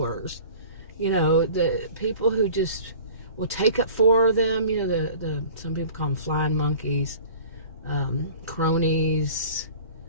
You know, the people who just will take up for them. You know, some people call them flying monkeys, cronies,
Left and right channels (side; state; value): both; inverted; correlation -0.44